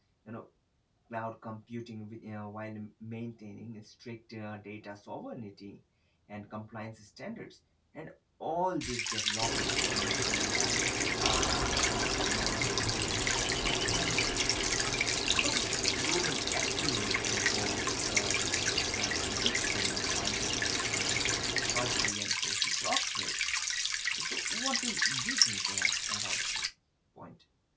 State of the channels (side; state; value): both; identical; correlation 1.00